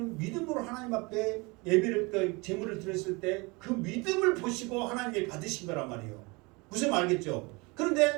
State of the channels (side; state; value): left; quieter; 26.7 dB